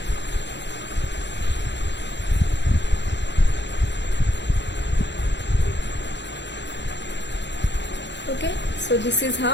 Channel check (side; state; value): right; late; 0.52 ms